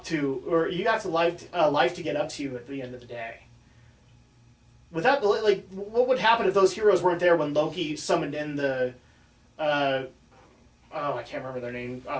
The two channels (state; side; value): identical; both; correlation 1.00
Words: to, or you have a life to get up to at the end of the day. Without, what would happen if those heroes weren't there when Loki summoned in the, I can't remember their name